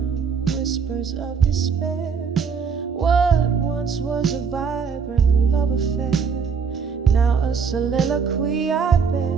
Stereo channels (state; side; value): quieter; left; 6.1 dB